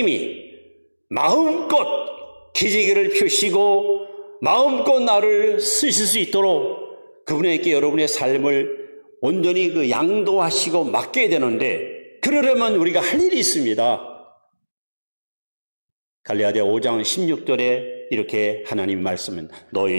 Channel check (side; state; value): both; inverted; correlation -1.00